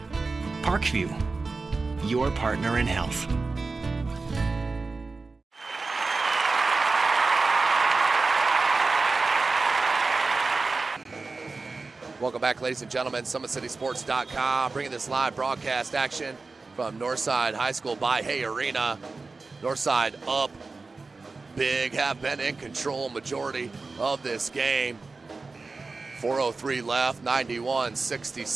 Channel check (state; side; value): quieter; left; 3.9 dB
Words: Parkview, your partner in health. Welcome back, ladies and gentlemen. SummitCitySports.com bringing this live broadcast action from Northside High School by Hay Arena. Northside up big, have been in control majority of this game. 4:03 left,